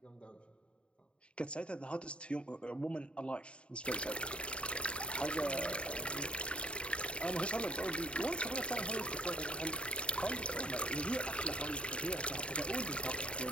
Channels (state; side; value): late; right; 0.057 ms